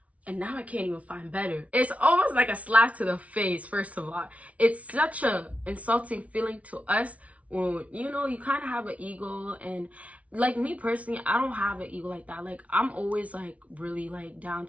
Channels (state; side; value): late; left; 0.066 ms